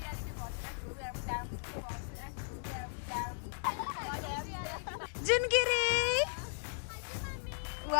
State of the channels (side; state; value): right; silent; digital silence